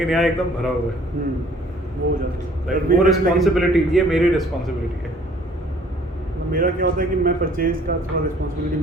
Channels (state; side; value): normal; both; correlation 0.56